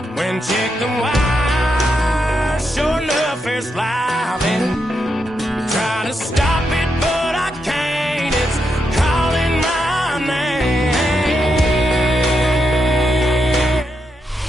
when check the wire, sure enough it's live, and try to stop it but I can't. It's calling my name.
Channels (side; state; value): both; normal; correlation 0.83